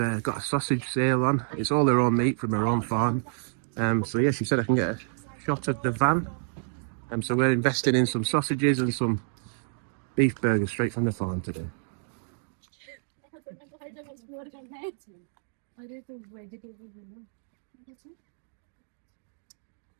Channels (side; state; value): left; silent; digital silence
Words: a sausage sale on. It's all her own meat from her own farm. So yeah, she said I can get a shot of the van. So we're investing in some sausages and some beef burgers straight from the farm today.